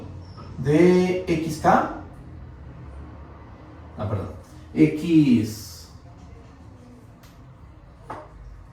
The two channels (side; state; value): both; identical; correlation 1.00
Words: de xk, x